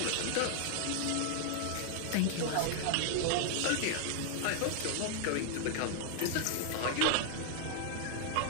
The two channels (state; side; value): different; both; correlation 0.00